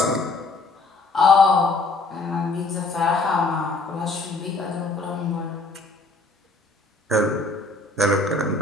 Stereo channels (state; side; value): quieter; right; 3.2 dB